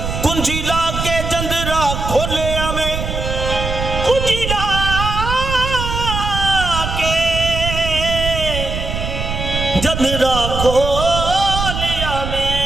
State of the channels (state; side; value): noise; right; rumble, 4 dB below the sound